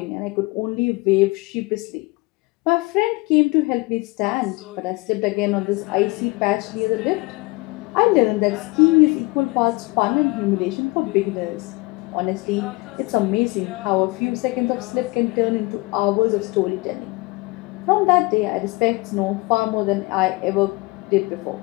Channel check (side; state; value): right; quieter; 24.6 dB